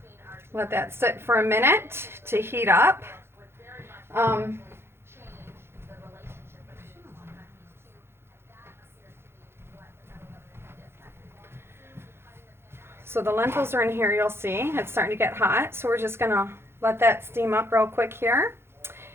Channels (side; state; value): left; late; 0.12 ms